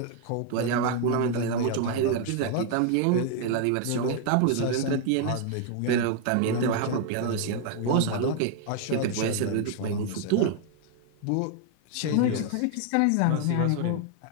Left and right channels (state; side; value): different; both; correlation 0.00